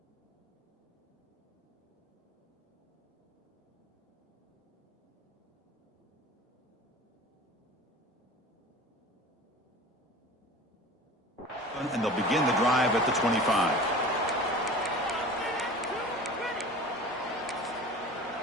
And they'll begin the drive at the 25.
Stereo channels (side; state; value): both; normal; correlation 0.39